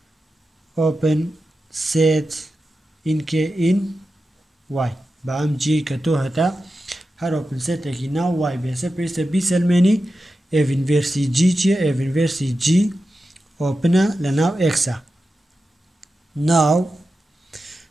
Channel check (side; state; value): both; normal; correlation 0.91